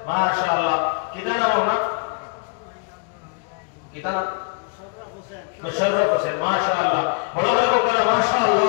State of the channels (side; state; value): right; quieter; 35.3 dB